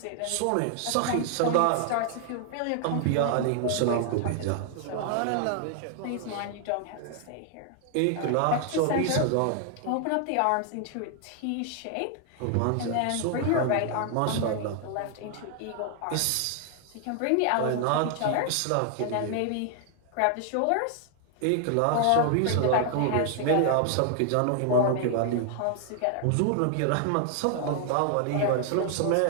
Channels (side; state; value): both; different; correlation 0.00